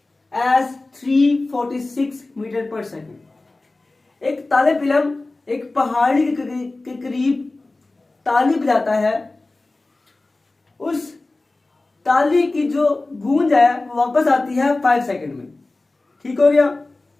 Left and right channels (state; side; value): quieter; right; 3.1 dB